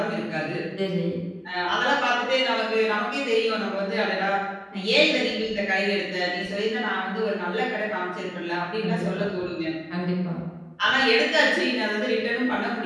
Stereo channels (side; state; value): both; identical; correlation 1.00